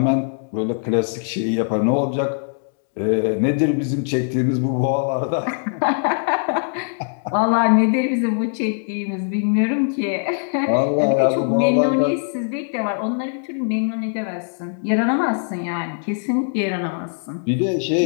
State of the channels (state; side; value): silent; right; 65 dB below the other